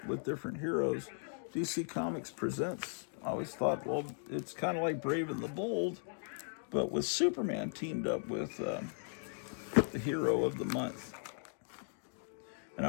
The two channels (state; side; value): silent; right; 53 dB below the other